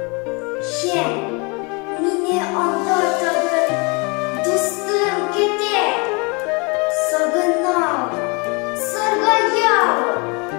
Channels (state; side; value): quieter; right; 30.3 dB